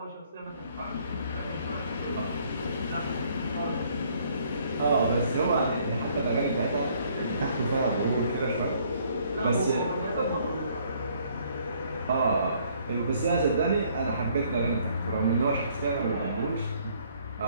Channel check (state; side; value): inverted; both; correlation -0.64